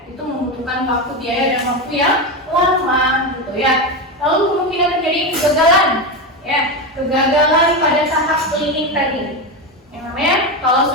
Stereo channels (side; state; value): both; normal; correlation 0.14